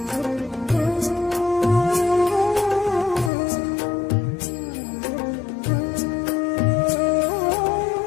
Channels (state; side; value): drops out; right; at 3.3 s